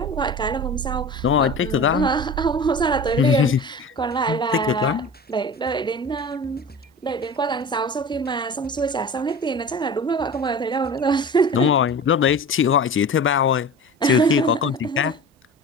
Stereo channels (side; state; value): both; normal; correlation 0.35